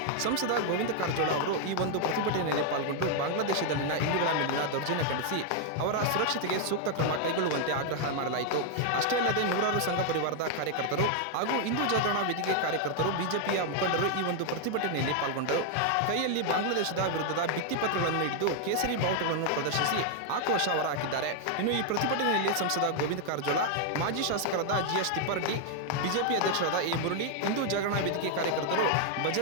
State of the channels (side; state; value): both; different; correlation 0.00